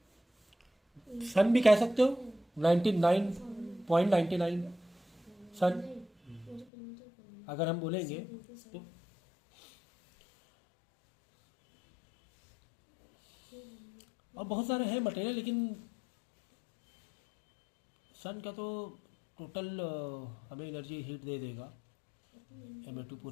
सन भी कह सकते हो, 99.99 सन अगर हम बोलेंगे तो, और बहुत सारे हैं मटेरियल, लेकिन सन का तो टोटल हमें एनर्जी हीट दे देगा, M2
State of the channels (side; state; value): right; drops out; at 6.7 s